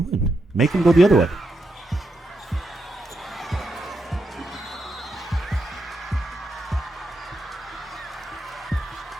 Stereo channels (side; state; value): both; normal; correlation 0.84